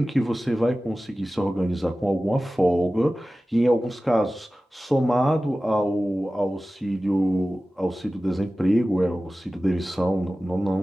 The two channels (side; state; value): both; normal; correlation 0.96